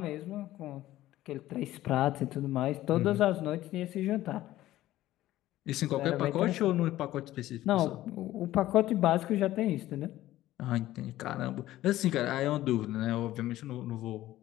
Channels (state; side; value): quieter; right; 15.0 dB